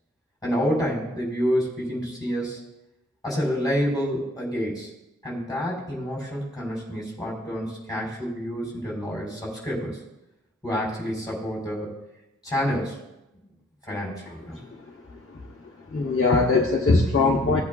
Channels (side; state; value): both; normal; correlation 0.61